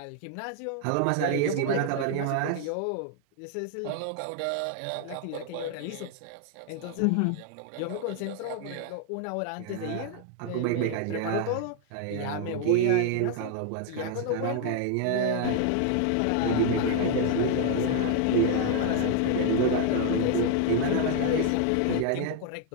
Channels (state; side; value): different; both; correlation 0.00